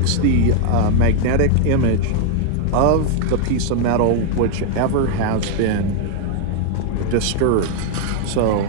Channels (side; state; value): both; different; correlation 0.00